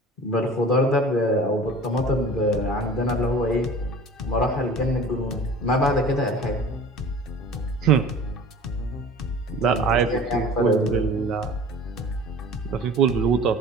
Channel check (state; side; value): normal; both; correlation 0.42